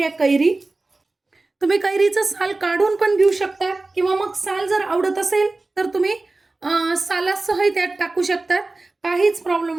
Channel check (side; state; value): left; quieter; 3.3 dB